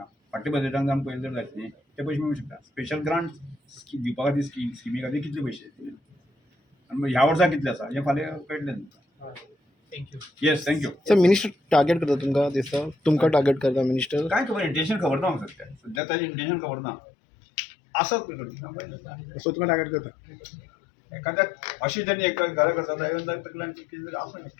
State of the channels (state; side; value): drops out; right; at 16.0 s